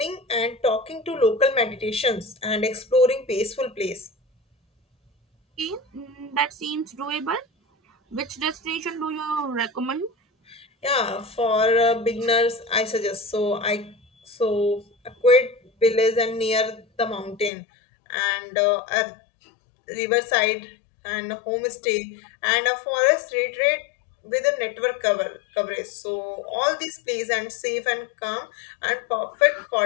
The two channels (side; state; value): right; drops out; at 17.5 s